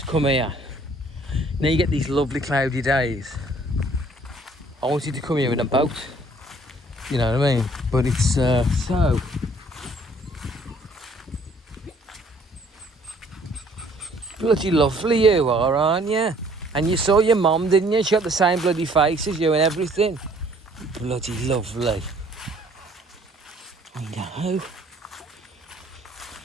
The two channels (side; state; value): both; normal; correlation 0.59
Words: come here. Now you get these lovely cloudy days. I wanted to come here in a boat, you know what I mean? But it's so bloody lovely you are, aren't you? And you saw your mum, didn't you? She got the same bloody face as you and everything. Bloody lovely. I know.